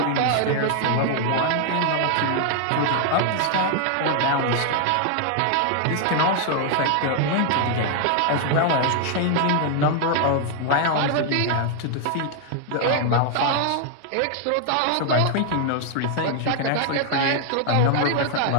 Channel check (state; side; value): different; both; correlation 0.00